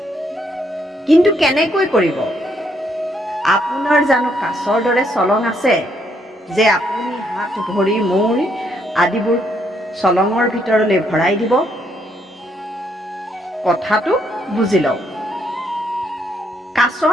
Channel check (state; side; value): normal; both; correlation 0.73